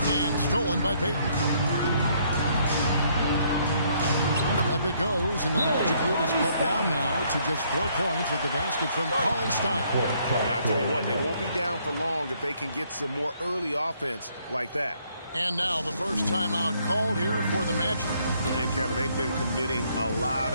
stolen by Payton. Up it goes, and the Magic lead is cut down now to just 4 points with the basket from Cauley Stein. I tell you what, they won't be down for long if they can get some more early offense like that. And now the first timeout called here for the Magic. And Kevin, they've been committing a lot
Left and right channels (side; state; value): both; inverted; correlation -0.68